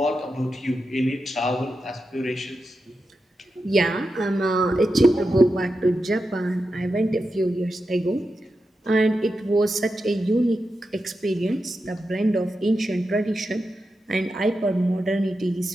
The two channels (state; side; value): normal; both; correlation 0.89